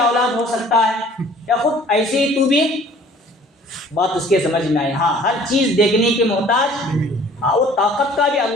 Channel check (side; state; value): both; normal; correlation 0.52